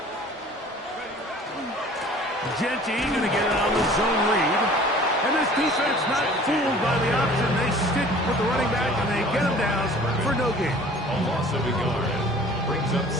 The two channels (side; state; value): both; normal; correlation 0.48